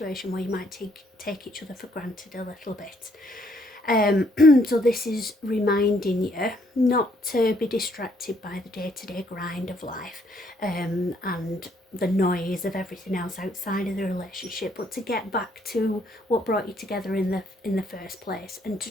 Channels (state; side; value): normal; both; correlation 0.69